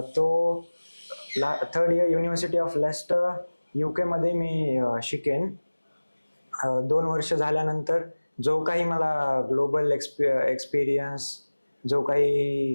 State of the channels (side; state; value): both; inverted; correlation -1.00